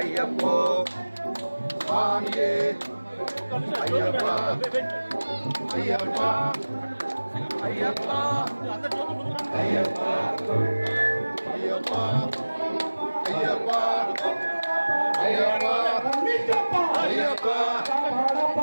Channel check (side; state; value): both; inverted; correlation -1.00